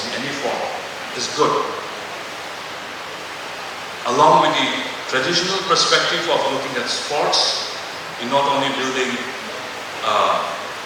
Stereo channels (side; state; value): both; identical; correlation 1.00